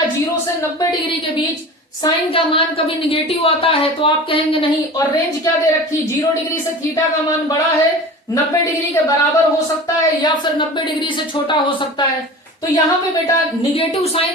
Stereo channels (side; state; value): both; normal; correlation 0.36